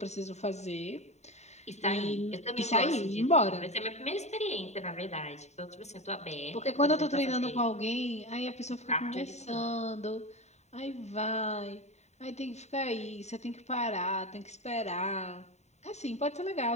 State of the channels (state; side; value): late; right; 0.32 ms